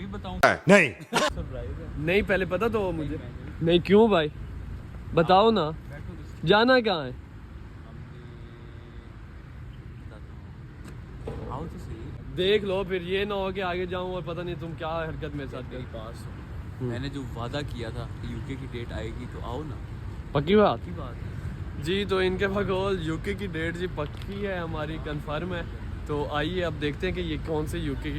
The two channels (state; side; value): identical; both; correlation 1.00